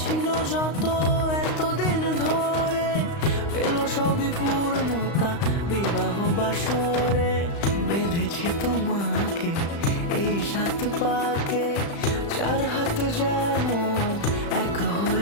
ছিল যত এতদিন ধরে, পেল সবই পূর্ণতা বিবাহ বাসরে। বেঁধেছি তোমাকে এই 7 পাকে, 4 হাত যেন এক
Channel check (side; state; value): right; late; 35 ms